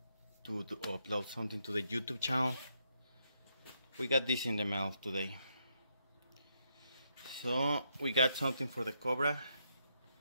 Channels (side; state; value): both; inverted; correlation -0.78